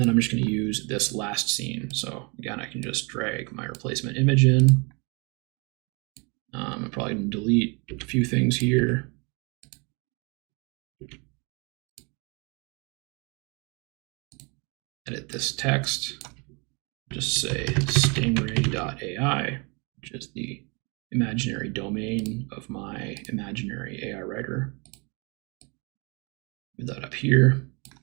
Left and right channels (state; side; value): quieter; left; 31.2 dB